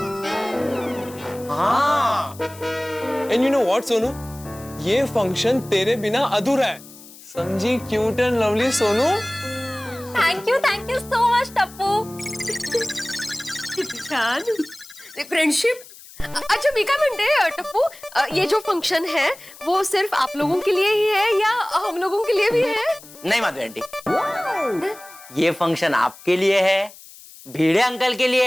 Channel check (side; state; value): left; noise; hiss, 20 dB below the sound